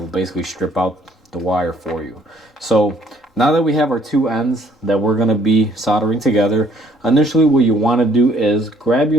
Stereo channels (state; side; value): normal; both; correlation 0.63